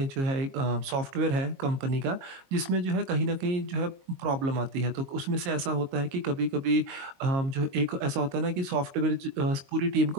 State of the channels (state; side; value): late; left; 22 ms